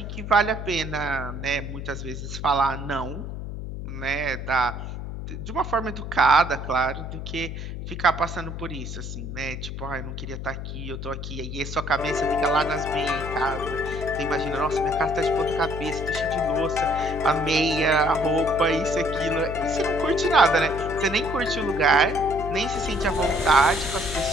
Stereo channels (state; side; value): noise; left; hum, 7 dB below the sound